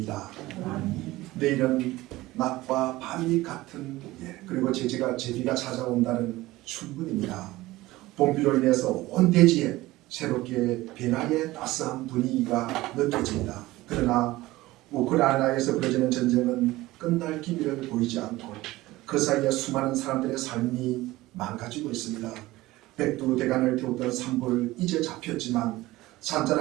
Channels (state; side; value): quieter; left; 18.3 dB